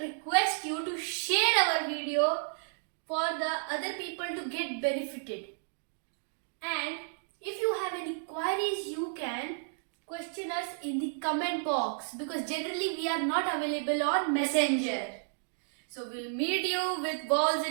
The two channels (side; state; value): left; silent; digital silence